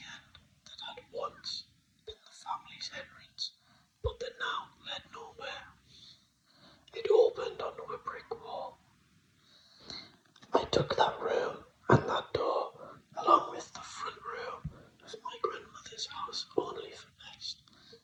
end that had once been the family's entrance, but that now led nowhere. It opened onto a brick wall. I took that room and that door, along with the front room of my grandmother's house, only for best, not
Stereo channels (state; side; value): identical; both; correlation 1.00